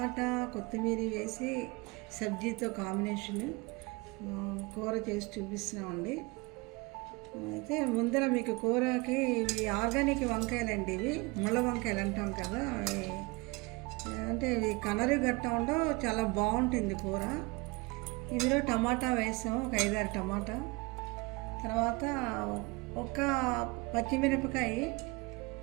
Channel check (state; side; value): quieter; left; 25.8 dB